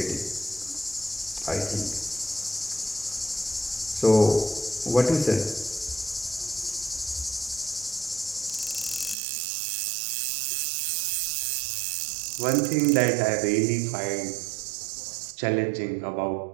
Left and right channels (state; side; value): drops out; left; at 9.2 s